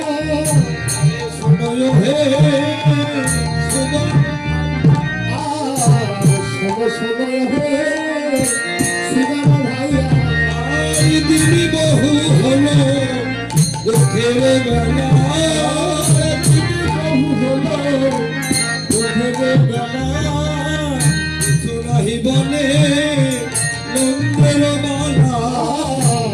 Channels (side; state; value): both; identical; correlation 1.00